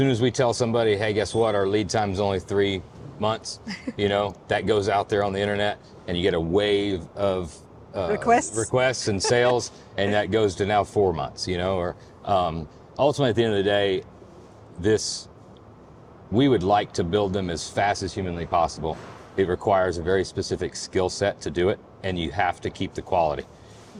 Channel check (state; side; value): identical; both; correlation 1.00